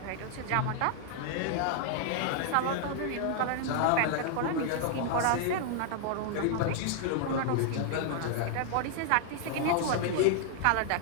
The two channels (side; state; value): both; different; correlation 0.00